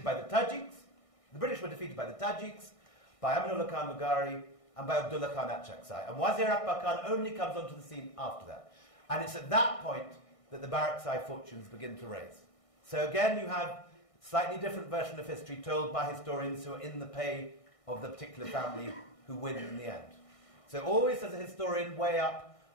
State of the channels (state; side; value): late; right; 1.6 ms